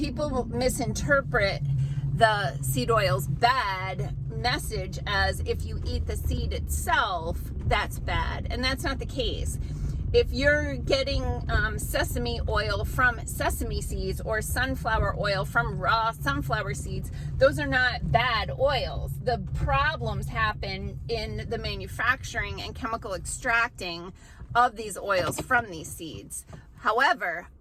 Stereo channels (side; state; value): both; identical; correlation 1.00